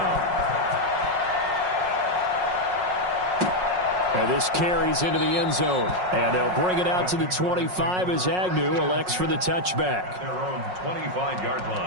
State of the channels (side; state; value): left; late; 5.5 ms